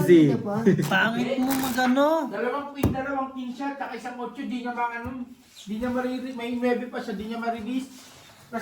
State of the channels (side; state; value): both; identical; correlation 1.00